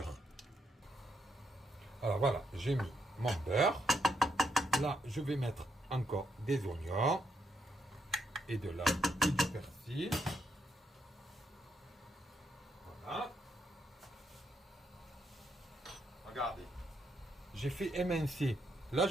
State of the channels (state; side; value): normal; both; correlation 0.78